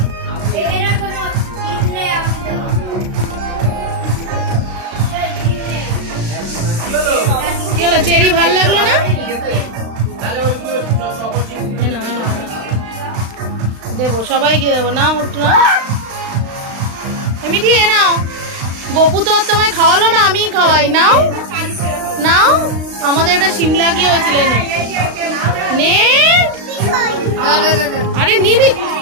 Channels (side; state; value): left; late; 35 ms